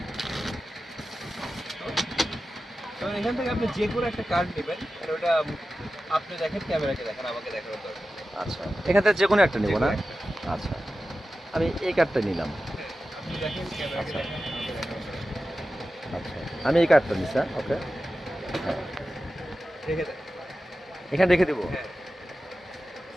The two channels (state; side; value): normal; both; correlation 0.93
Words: তো এখান থেকে আপনি যে কোনো একটা কার্ড নেবেন, আর ওটা আপনি দেখেন, ক্যামেরাকে দেখেন, আমাকে দেখানোর দরকার নেই। আচ্ছা, এখান থেকে যে কোনো একটা নেব যে কোনো না? একটা। আচ্ছা, আমি এই কার্ডটা নিলাম। হ্যাঁ, আপনি দেখেন, ক্যামেরাকে আচ্ছা। দেখেন, আমাকে দেখানোর দরকার নেই। আচ্ছা, আমি এই কার্ডটা নিচ্ছি। ওকে, রেখে দেন। এখানে রেখে দিব। হ্যাঁ।